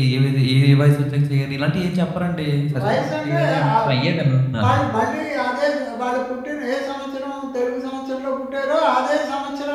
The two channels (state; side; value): identical; both; correlation 1.00